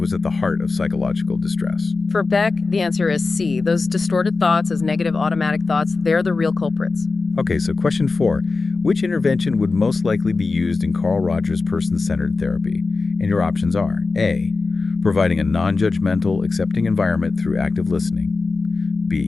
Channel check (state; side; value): quieter; right; 4.0 dB